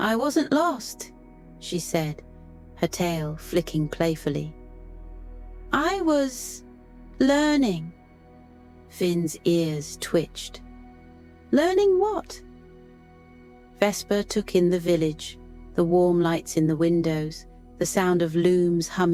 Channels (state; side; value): identical; both; correlation 1.00